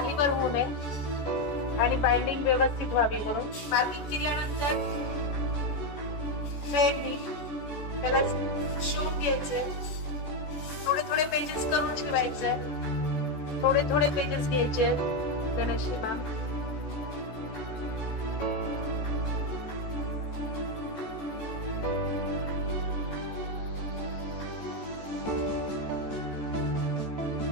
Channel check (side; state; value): right; late; 14 ms